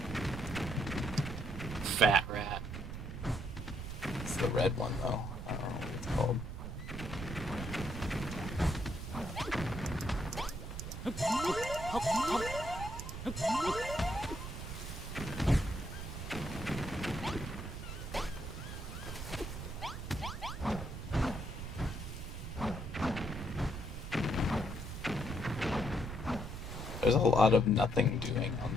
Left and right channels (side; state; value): right; noise; rumble, 7 dB below the sound